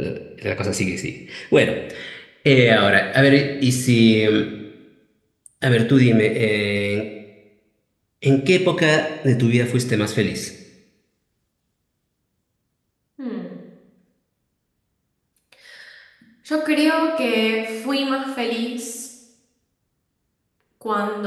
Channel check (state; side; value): identical; both; correlation 1.00